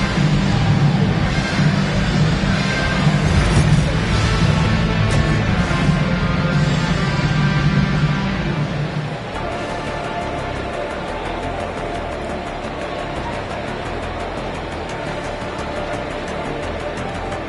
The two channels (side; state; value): both; identical; correlation 1.00